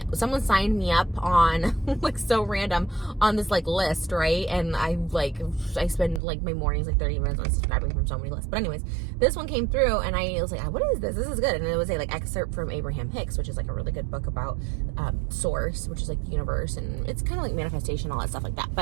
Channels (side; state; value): left; drops out; at 6.2 s